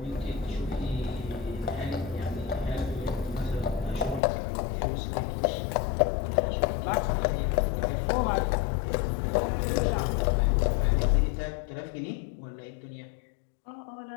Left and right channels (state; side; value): drops out; right; at 4.2 s